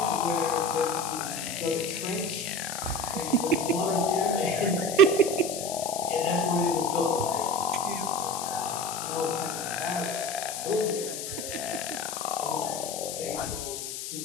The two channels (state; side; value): noise; left; hiss, 6 dB below the sound